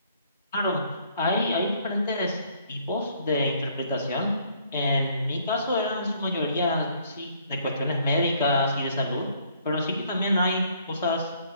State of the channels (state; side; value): inverted; both; correlation -0.64